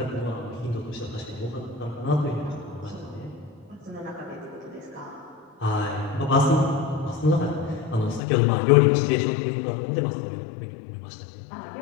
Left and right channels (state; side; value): drops out; right; at 8.2 s